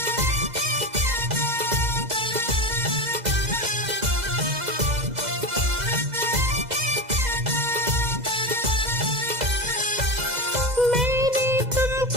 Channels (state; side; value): late; left; 2.0 ms